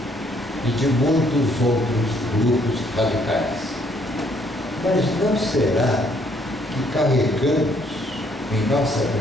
e de muitos outros grupos radicais. Mas não será que carregamos em nossa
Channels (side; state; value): both; normal; correlation 0.67